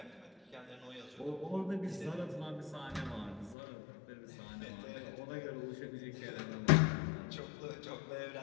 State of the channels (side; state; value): right; drops out; at 3.6 s